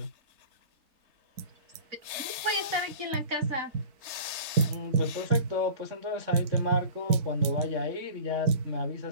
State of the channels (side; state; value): left; late; 3.3 ms